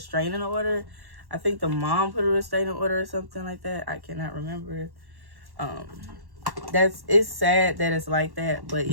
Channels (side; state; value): left; late; 1.1 ms